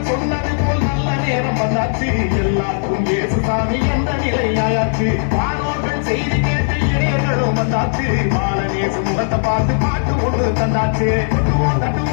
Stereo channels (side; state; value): right; silent; digital silence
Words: சொன்னது போல் நல்ல நேரம் வந்தாச்சு. எல்லாருக்கும் ஏசு சாமி என்ற நிலையாயாச்சு. வானோர்கள் செய்தி கேட்டு இளையர்களும் வந்தாச்சு. பாலநேசு முகத்தை பார்த்து பாட்டு ஒன்று தந்தாச்சு. கொட்டுவோம்